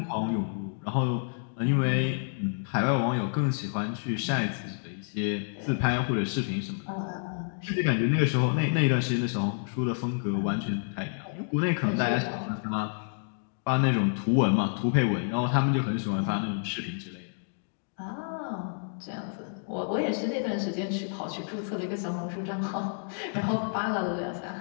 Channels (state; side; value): silent; right; digital silence